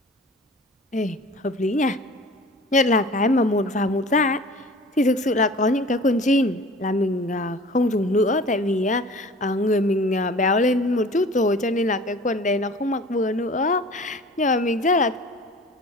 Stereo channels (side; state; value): both; normal; correlation 0.43